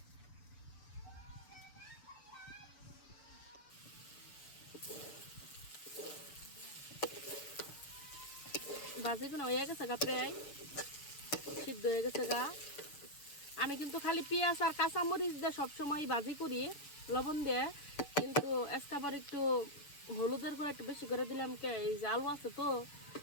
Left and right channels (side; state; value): right; late; 7.0 ms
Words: ভাজিগুলো হয়ে গেছে গা, প্রায় সিদ্ধ হয়ে গেছে গা। আমি কিন্তু খালি পেঁয়াজ আর কাঁচামরিচ দিয়ে সবসময় ভাজি করি লবণ দিয়ে, কিন্তু আজকাবার একটু হলুদের গুঁড়া একটু বেশি করে দিলাম। এই যে আলু আছে তো